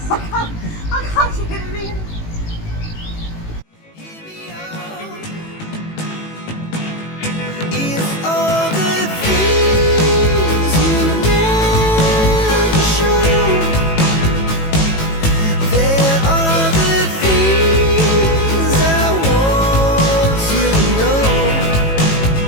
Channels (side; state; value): right; late; 18 ms